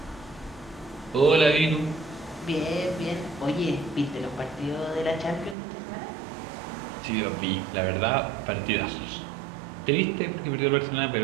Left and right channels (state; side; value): drops out; left; at 5.6 s